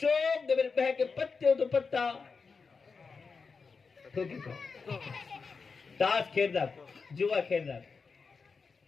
دے میرے بہ کے پتے ہو تو پتا تاس کھیر دا جوا کھیر دا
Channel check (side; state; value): right; quieter; 4.9 dB